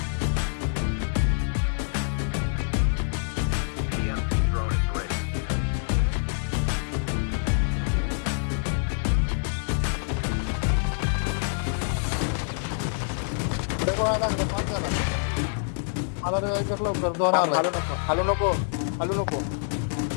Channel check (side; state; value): right; silent; digital silence